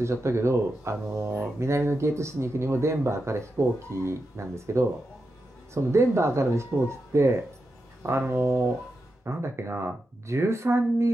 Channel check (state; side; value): normal; both; correlation 0.88